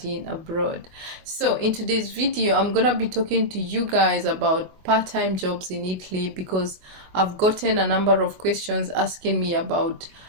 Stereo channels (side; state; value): left; late; 23 ms